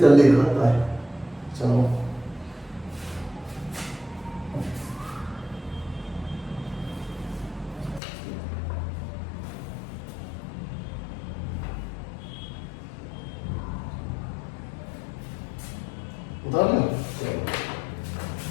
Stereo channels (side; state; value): right; drops out; at 8.0 s